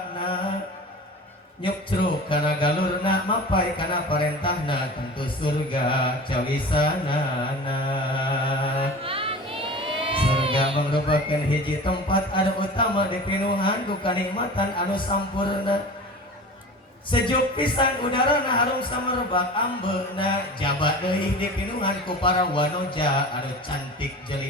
nyukcruk kana galurna mapai kana parentahna tentu surga cawisanana. Surga mangrupakeun hiji tempat anu utama dipinuhan ku kanikmatan anu sampurna. Sejuk pisan udarana harum samerbak ambeuna jabat deui dipinuhan ku para wanoja anu cantik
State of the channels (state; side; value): normal; both; correlation 0.36